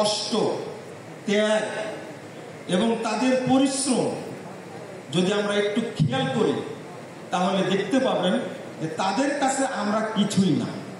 ত্যাগ এবং তাদের পরিশ্রম যদি আমরা একটু খেয়াল করি, তাহলে দেখতে পাবেন যে তাদের কাছে আমরা কিছুই না।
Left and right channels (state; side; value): identical; both; correlation 1.00